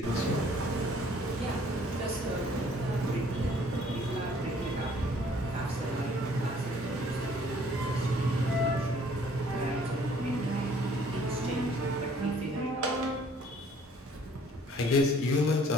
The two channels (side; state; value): both; normal; correlation 0.58